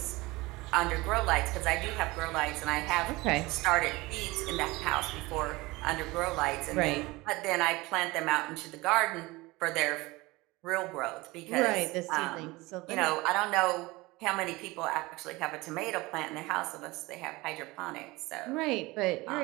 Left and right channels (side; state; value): left; quieter; 21.9 dB